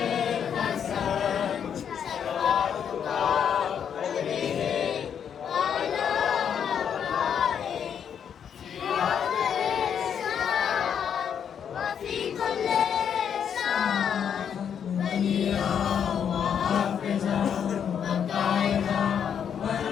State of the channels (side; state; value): right; quieter; 8.1 dB